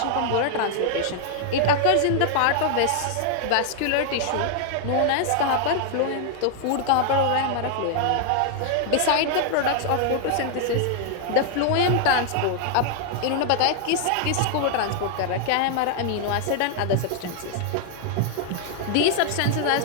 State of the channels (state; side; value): different; both; correlation -0.01